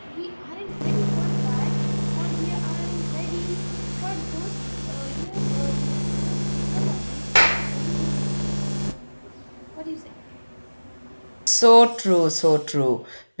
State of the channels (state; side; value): inverted; both; correlation -1.00